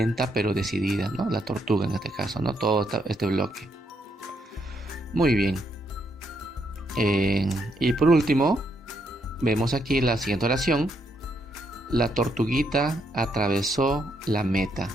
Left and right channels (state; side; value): normal; both; correlation 0.77